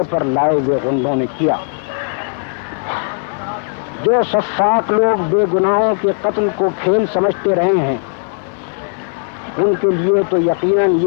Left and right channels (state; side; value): silent; right; 58 dB below the other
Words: پر لائے ہوئے غنڈوں نے کیا۔ جو سفاک لوگ بے گناہوں کے قتل کو کھیل سمجھتے رہے ہیں ان کے لیے تو یقیناً